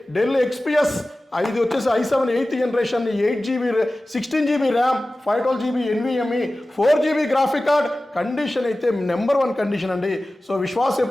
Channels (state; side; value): normal; both; correlation 0.96